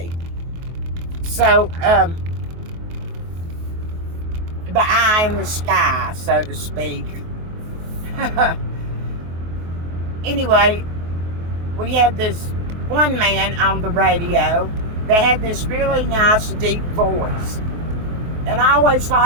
So, the eye in the sky, so to speak. Anyway, we had this one man on the radio that had this really nice deep voice. And I always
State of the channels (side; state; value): left; late; 23 ms